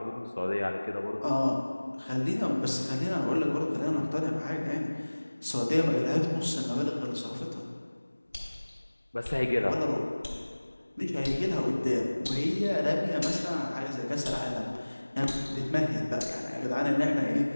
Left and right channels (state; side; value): inverted; both; correlation -1.00